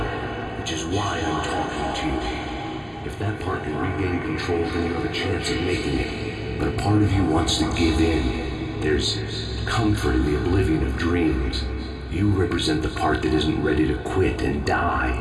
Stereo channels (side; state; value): both; identical; correlation 1.00